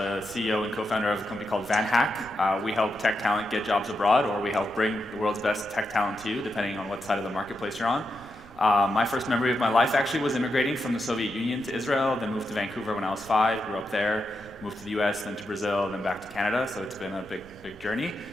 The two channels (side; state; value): right; noise; rumble, 22 dB below the sound